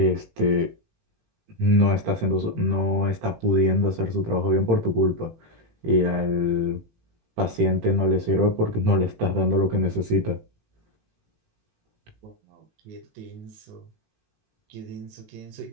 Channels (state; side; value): late; left; 18 ms